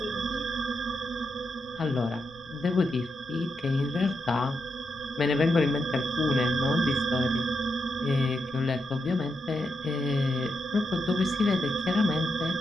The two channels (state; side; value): noise; left; rumble, 28 dB below the sound